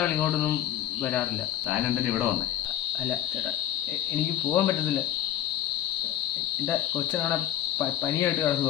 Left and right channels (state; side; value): quieter; right; 12.1 dB